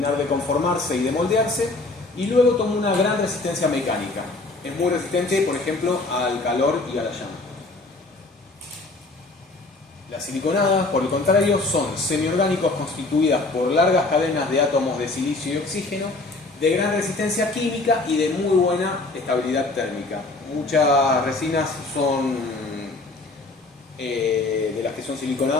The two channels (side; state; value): right; quieter; 3.2 dB